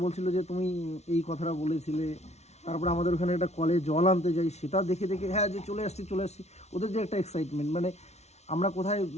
বলছিল যে তুমি এই কথাটা বলেছিলে। তারপরে আমাদের ওখানে একটা কলে জল আনতে যাই, সেটা দেখে হ্যাঁ যে চলে আসছি। ওদের যে একটা এক্সাইটমেন্ট, মানে আমরা কোথায়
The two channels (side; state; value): right; late; 0.32 ms